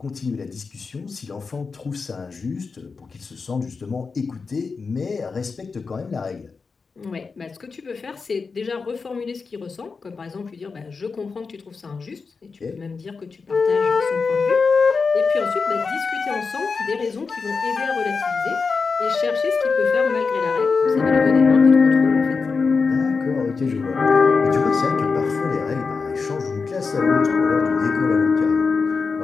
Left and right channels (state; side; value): quieter; right; 4.8 dB